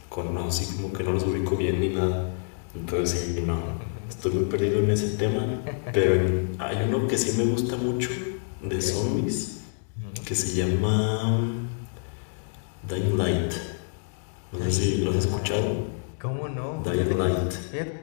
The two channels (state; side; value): silent; right; digital silence